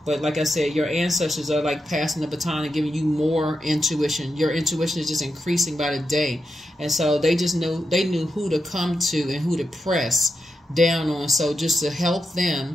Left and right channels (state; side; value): normal; both; correlation 0.87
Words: But like I said, your ancestors are like passing the baton and giving you more intuition. Your intuition is just increasing by the day. And so they knew who to come to and who to press down on. So just to help